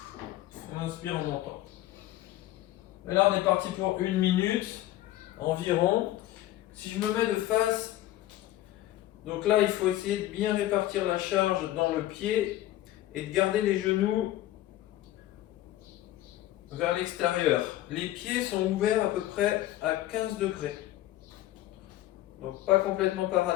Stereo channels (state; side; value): quieter; right; 14.8 dB